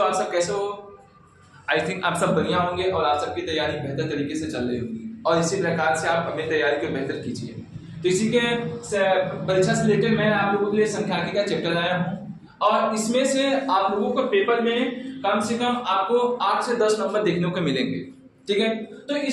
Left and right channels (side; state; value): both; identical; correlation 1.00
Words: आप सब कैसे हो? आई थिंक आप सब बढ़िया होंगे और आप सबकी तैयारी बेहतर तरीके से चल रही होगी और इसी प्रकार से आप अपनी तैयारी को बेहतर कीजिए। तो इसी के परीक्षा से रिलेटेड मैं आप लोगों के लिए सांख्यिकी का चैप्टर लाया हूँ और इसमें से आप लोगों को पेपर में कम से कम आपको 8 से 10 नंबर देखने को मिलेंगे। ठीक है, तो